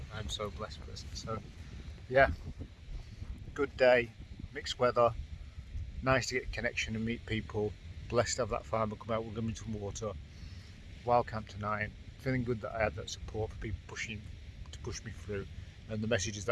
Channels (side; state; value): both; identical; correlation 1.00